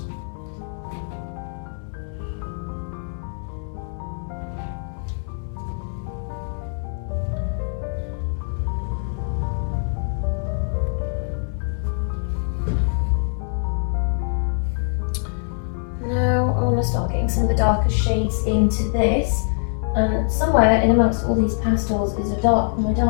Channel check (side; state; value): right; silent; digital silence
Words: Start getting some of the darker shades into this, and somewhere in amongst all these pastels is my